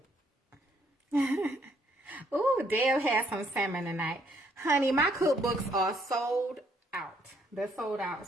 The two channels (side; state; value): both; normal; correlation 0.68